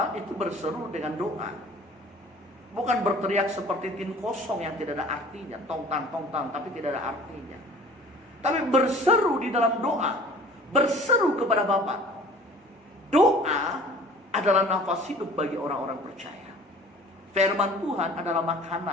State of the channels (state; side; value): normal; both; correlation 0.47